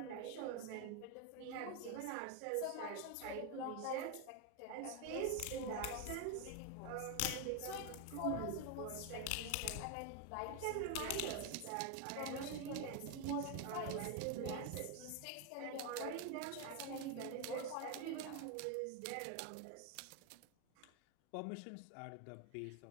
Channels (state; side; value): different; both; correlation 0.01